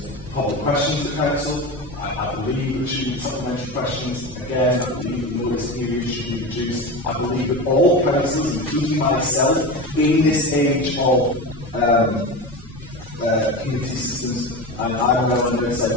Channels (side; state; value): both; normal; correlation 0.25